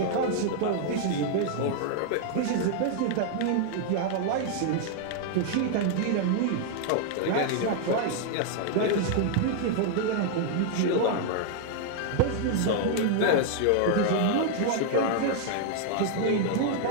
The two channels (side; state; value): both; different; correlation 0.00